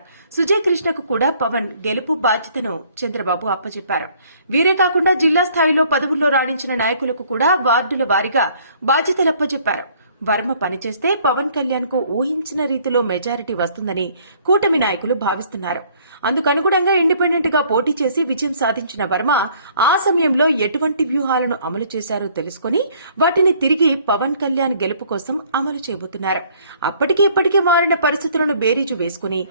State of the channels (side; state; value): both; inverted; correlation -0.60